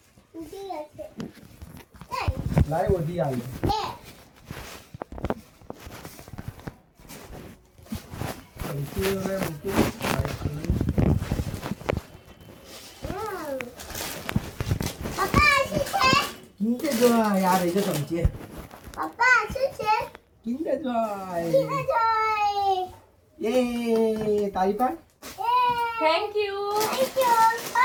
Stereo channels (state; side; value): identical; both; correlation 1.00